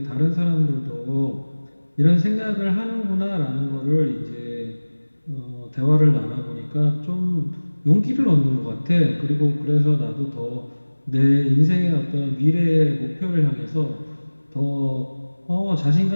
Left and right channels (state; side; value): inverted; both; correlation -1.00